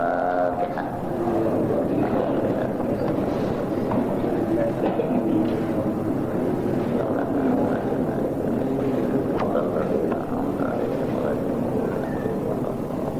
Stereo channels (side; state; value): both; identical; correlation 1.00